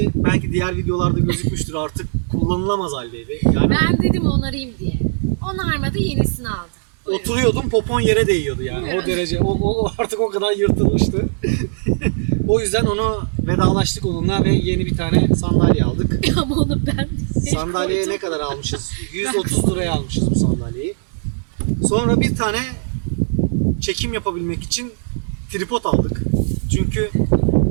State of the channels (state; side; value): silent; left; digital silence